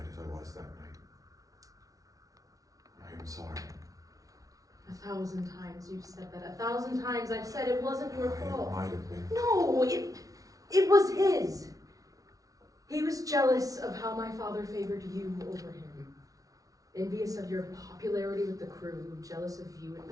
as I was that night. I am sorry. 1,000 times you've said that. 1,000 times I've said it wasn't your fault. It might have been. No, it was his. He was jealous of how my father favored you over him. Envious of your popularity with the crew, jealous of you and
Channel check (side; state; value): left; late; 0.18 ms